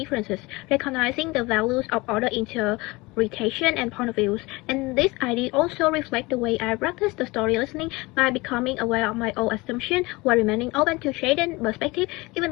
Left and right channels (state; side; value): quieter; right; 23.2 dB